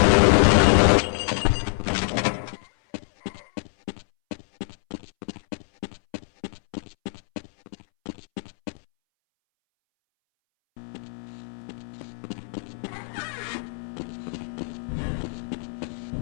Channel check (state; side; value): silent; right; 61 dB below the other